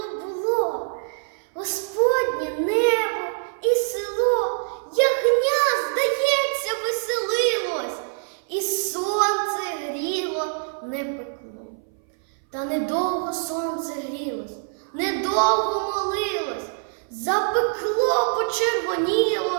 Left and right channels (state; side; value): silent; left; 60 dB below the other